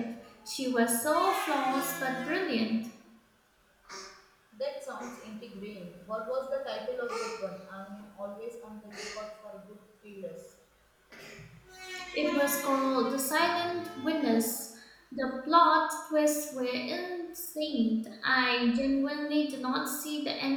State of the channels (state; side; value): identical; both; correlation 1.00